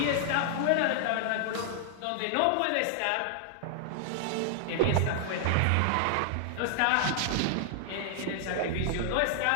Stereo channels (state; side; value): different; both; correlation -0.01